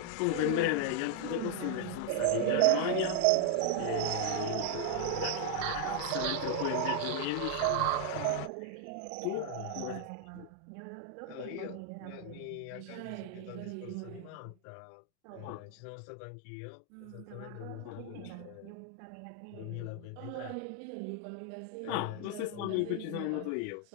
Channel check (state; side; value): different; both; correlation 0.00